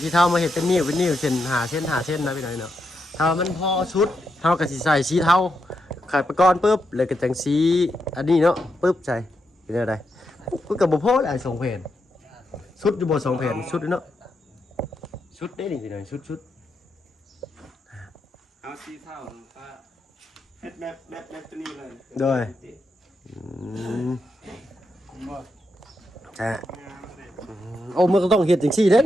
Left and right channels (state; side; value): normal; both; correlation 0.83